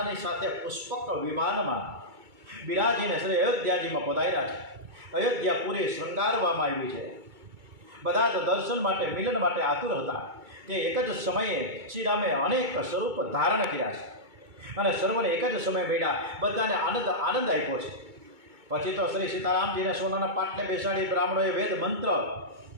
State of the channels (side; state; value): left; late; 2.2 ms